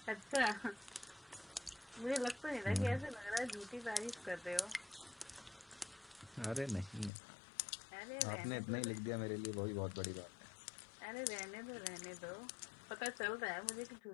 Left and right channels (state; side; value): drops out; right; at 7.1 s